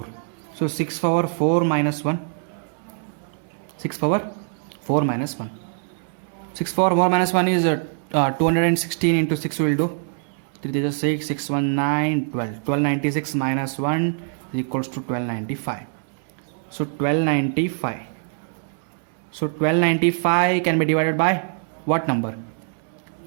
So 6 power 4 minus 1. 6 power 4 minus 1. 6 power 4 minus 1 is 216 into 6 will do. 3 is 6, 6, 1, 9, 12. 1296 minus 1 is equals to 1295. So 1295. So 1295 can be divided by what number?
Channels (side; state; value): left; silent; 63 dB below the other